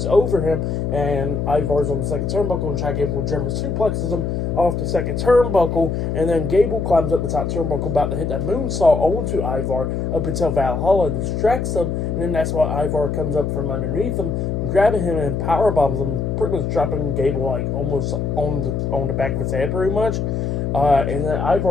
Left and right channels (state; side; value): noise; left; hum, 1 dB below the sound